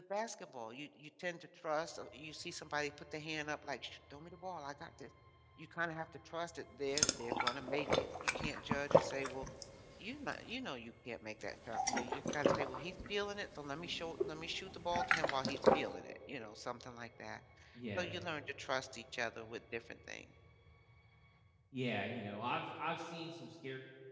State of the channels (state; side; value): identical; both; correlation 1.00